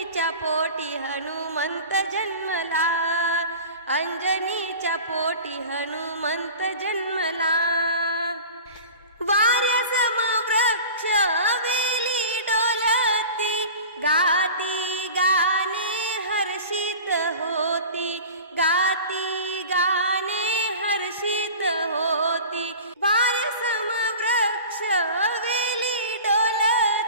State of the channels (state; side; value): inverted; both; correlation -0.37